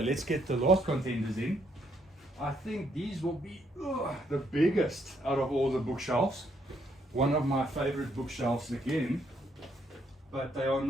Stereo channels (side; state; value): both; normal; correlation 0.72